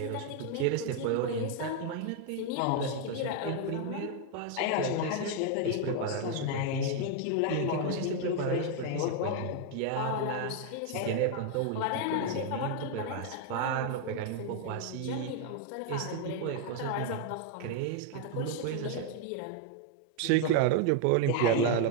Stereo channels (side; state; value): both; different; correlation 0.01